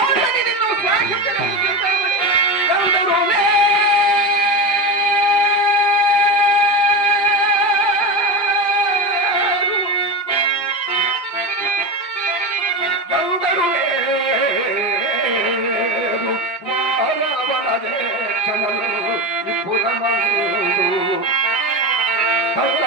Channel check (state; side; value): late; right; 5.8 ms